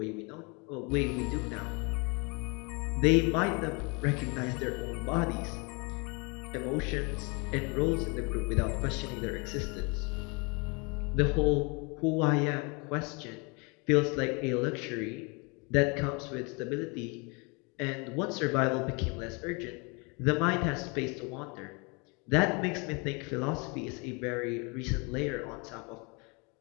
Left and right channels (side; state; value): right; quieter; 31.0 dB